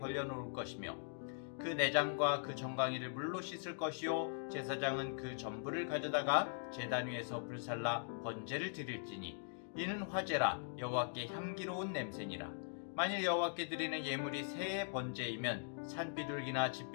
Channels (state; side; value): silent; right; digital silence